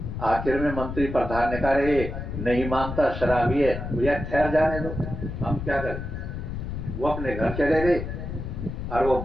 आखिर में मंत्री प्रधान ने कहा रे नहीं मानता, शराबी है, भैया ठहर जाने दो, हम क्या करें। वो अपने घर चले गए। और वो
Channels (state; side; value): noise; left; rumble, 6 dB below the sound